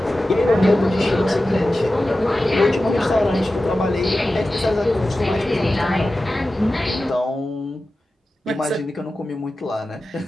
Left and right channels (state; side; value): normal; both; correlation 0.94